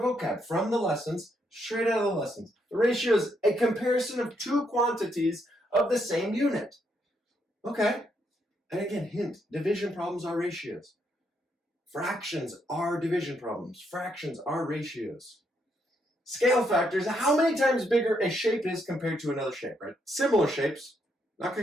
from the lessons, straight out of the lessons. The ratio is a comparison of two quantities of the same unit. Okay, and again, hint, division problems are ratios. Fractions are division problems. Fractions are ratios. Scale factors, how many times bigger a shape is compared to another shape, right? Similar shapes, not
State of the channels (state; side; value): normal; both; correlation 0.76